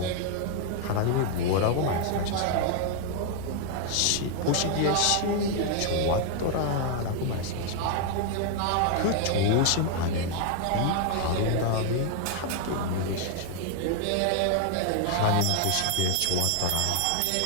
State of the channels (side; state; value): both; different; correlation 0.00